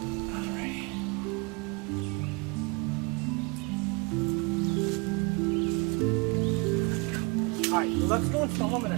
Alright, let's go and film them in a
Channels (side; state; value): left; quieter; 29.6 dB